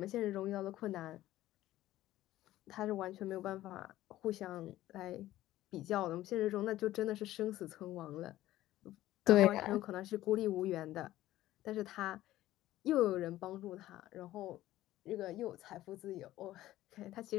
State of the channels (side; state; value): right; quieter; 14.9 dB